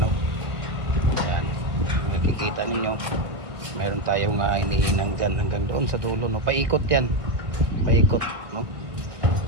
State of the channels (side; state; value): left; late; 1.5 ms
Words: Yan, makikita niyo, meron tayong hinihinang dyan hanggang doon sa dulo, no? Paikot yan, paikot, no?